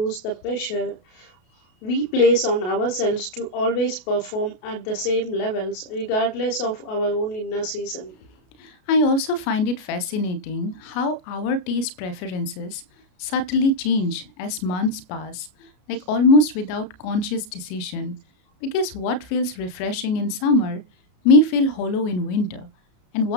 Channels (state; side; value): late; right; 33 ms